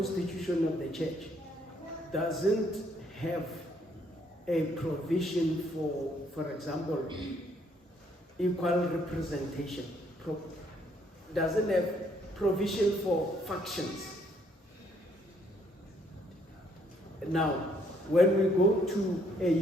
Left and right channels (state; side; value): normal; both; correlation 0.68